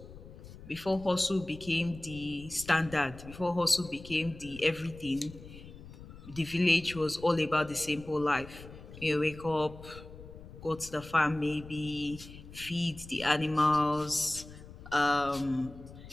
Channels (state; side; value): noise; left; rumble, 16 dB below the sound